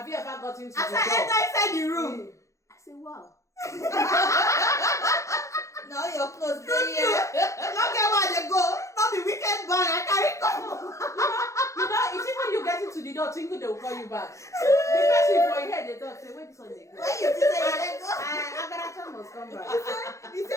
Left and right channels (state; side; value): late; right; 0.15 ms